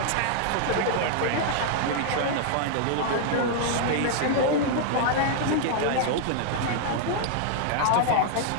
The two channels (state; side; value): different; both; correlation 0.00